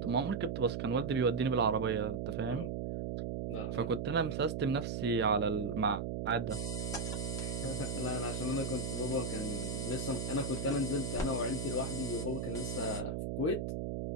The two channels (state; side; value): noise; right; hum, 2 dB below the sound